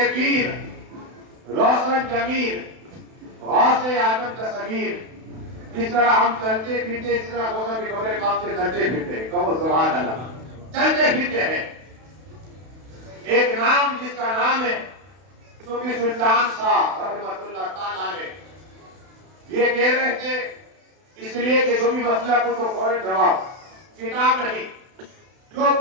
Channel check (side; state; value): left; late; 32 ms